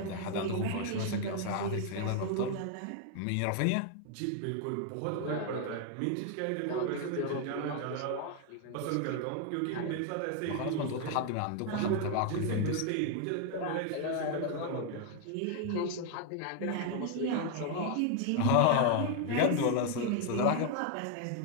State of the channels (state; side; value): different; both; correlation 0.00